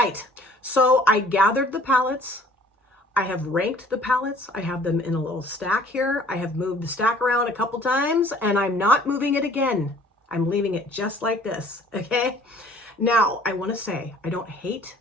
So I gathered the palettes. I have ranked the palettes. I have them in a little stack here. I have moved the stack around a couple times, and I'm not moving it again. I'm leaving it just like this, okay? Now, I want to say I don't hate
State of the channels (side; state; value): both; normal; correlation 0.54